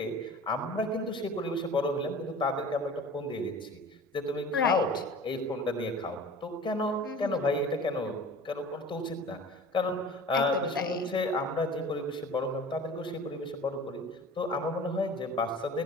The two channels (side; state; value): both; normal; correlation 0.41